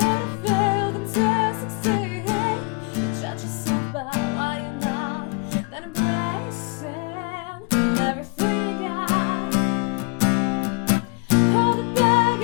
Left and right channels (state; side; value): quieter; right; 32.3 dB